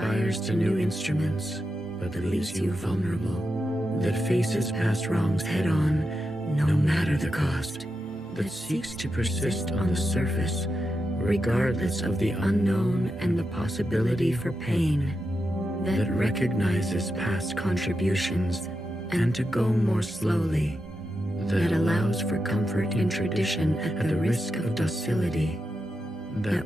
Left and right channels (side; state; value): both; normal; correlation 0.88